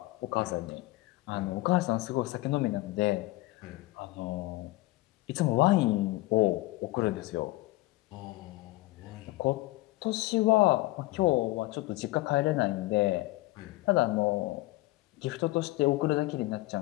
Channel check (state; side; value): quieter; right; 19.7 dB